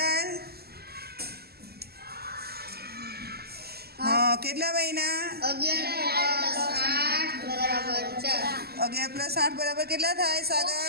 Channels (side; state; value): left; late; 0.46 ms